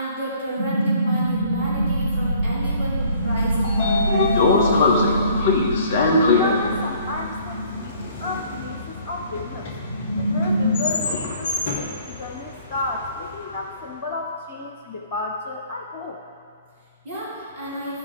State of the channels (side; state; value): both; inverted; correlation -0.56